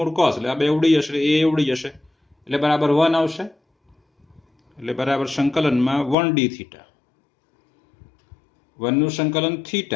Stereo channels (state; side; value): drops out; right; at 6.2 s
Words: કોસ એટલે આ બે ઉડી જશે, એ ઉડી જશે એટલે બરાબર 1 આવશે. એટલે બરાબર સંકલનમાં 1d થીટા, 1 નું સંકલન